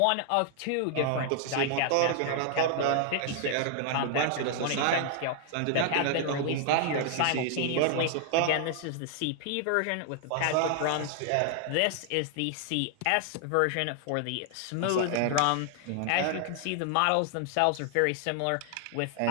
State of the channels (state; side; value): different; both; correlation 0.00